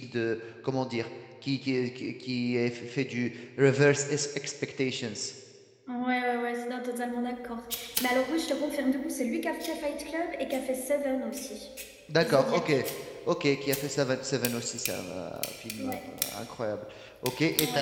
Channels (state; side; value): identical; both; correlation 1.00